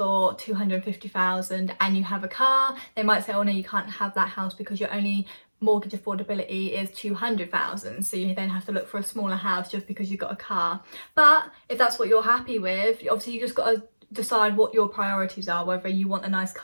250,000 and you have a car, they might say, oh no, you can't have that house because your only mortgage affordability is 200,000, so you then have to look for a smaller house just because you've got a car. But if that's what you're happy with, obviously you just got to decide what your priorities are, whether you want a nice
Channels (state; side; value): inverted; both; correlation -1.00